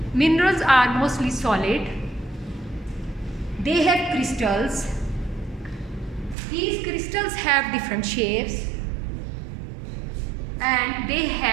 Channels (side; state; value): left; drops out; at 6.4 s